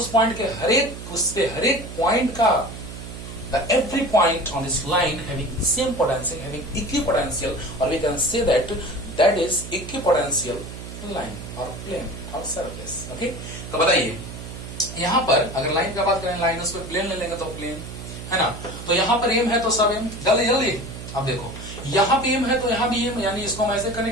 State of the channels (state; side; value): noise; right; hum, 11 dB below the sound